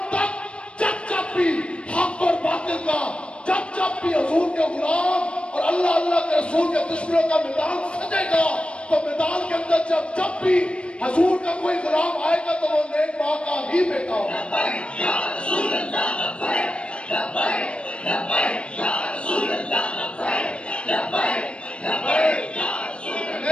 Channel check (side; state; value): right; late; 0.059 ms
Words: تک جب بھی حق اور باطل کا, جب بھی حضور کے غلام اور اللہ اللہ کے رسول کے دشمنوں کا میدان سجے گا, تو میدان کے اندر جب بھی حضور کا کوئی غلام آئے گا تو وہ نیک ماں کا ہی بیٹا ہوگا.